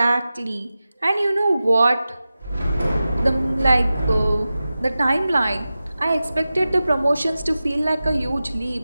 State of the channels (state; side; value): inverted; both; correlation -0.94